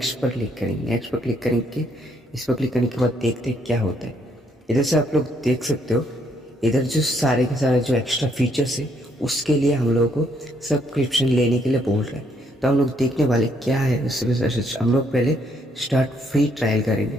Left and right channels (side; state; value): both; normal; correlation 0.71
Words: पर क्लिक करेंगे। नेक्स्ट पर क्लिक करेंगे, इस पर क्लिक करने के बाद देखते हैं क्या होता है। इधर से आप लोग देख सकते हो, इधर जो सारे के सारे जो एक्स्ट्रा फीचर्स है उसके लिए हम लोगों को सब्सक्रिप्शन लेने के लिए बोल रहे हैं। तो हम लोग देखने वाले क्या है उससे हम लोग पहले स्टार्ट फ्री ट्रायल करेंगे।